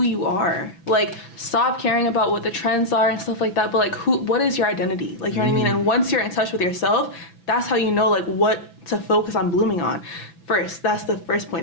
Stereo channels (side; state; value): right; late; 6.0 ms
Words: you are. Like, stop caring about what the trends are and stuff like that, but, like, what is your identity? Like, you know what I mean? And once you're in touch with yourself, that's how you know, like, what to focus on blooming on. First, that's the first